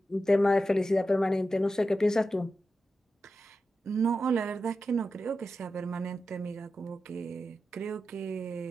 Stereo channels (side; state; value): both; normal; correlation 0.91